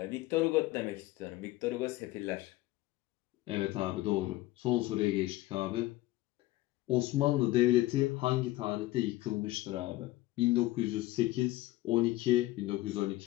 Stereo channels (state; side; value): quieter; right; 17.3 dB